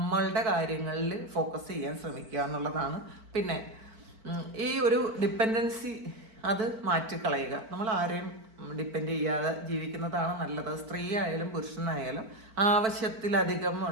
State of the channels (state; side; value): late; left; 4.5 ms